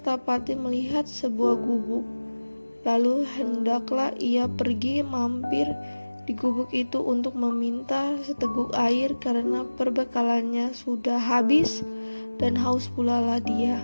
melihat sebuah gubuk. Lalu hendaklah ia pergi mampir di gubuk itu untuk meminta seteguk air karena perbekalannya sudah habis dan haus pula lah dia.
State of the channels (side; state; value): both; inverted; correlation -1.00